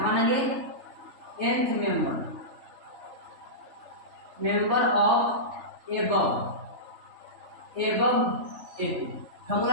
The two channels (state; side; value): late; left; 3.4 ms